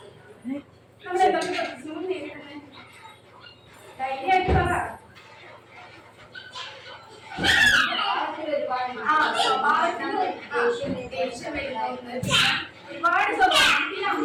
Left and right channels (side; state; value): both; identical; correlation 1.00